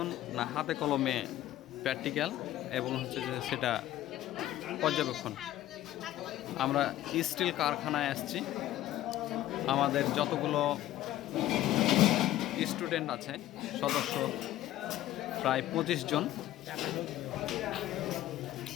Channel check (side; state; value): right; quieter; 14.0 dB